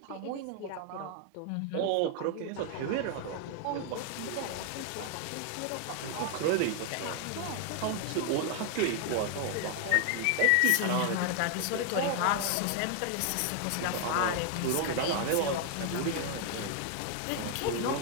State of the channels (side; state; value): both; different; correlation 0.00